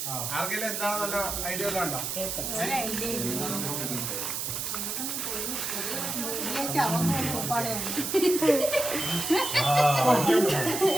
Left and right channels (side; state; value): right; noise; hiss, 3 dB below the sound